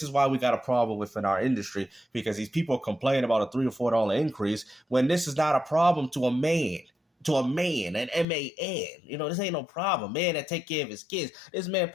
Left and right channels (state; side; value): drops out; right; at 8.2 s